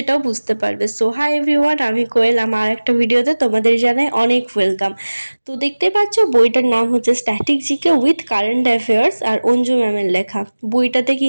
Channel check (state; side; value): inverted; both; correlation -1.00